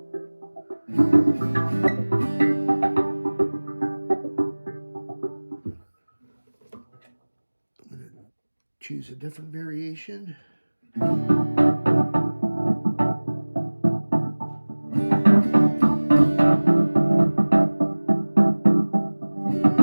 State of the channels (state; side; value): inverted; both; correlation -1.00